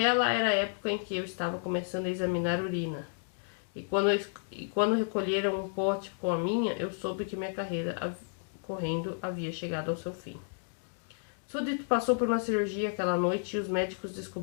era a época em que eu estava começando a examinar urina. E quando recolheram um pote com a minha, eu soube que minha carreira correndo havia chegado ao seu fim. Sudit passou por uma cirurgia aquela noite e os médicos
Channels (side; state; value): right; silent; digital silence